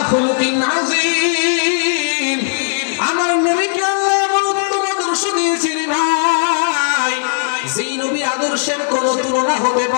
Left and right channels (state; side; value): silent; right; digital silence